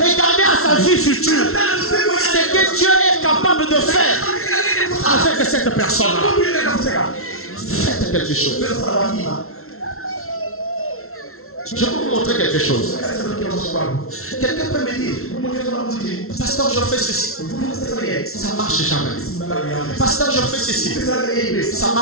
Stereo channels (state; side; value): late; right; 0.62 ms